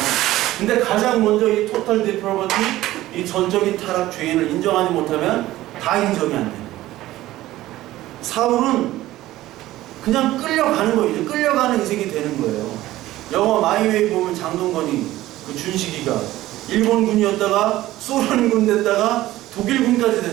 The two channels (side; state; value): left; quieter; 15.8 dB